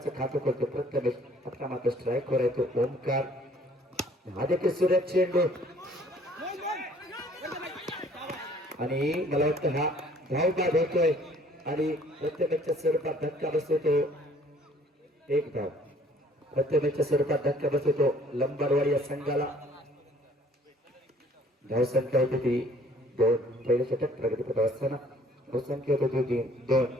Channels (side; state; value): both; normal; correlation 0.57